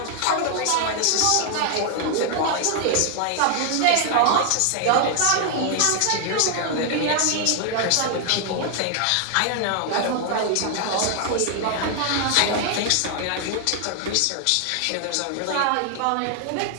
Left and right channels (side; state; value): both; different; correlation 0.00